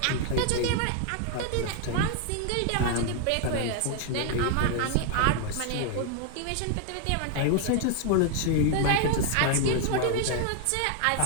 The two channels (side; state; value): both; different; correlation 0.00